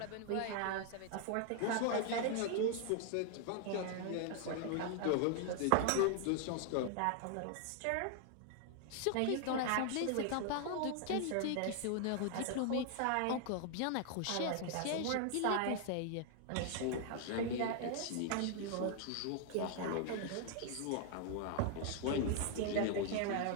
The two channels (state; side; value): different; both; correlation 0.00